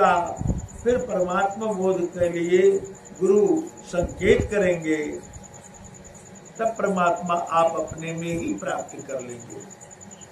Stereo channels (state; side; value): identical; both; correlation 1.00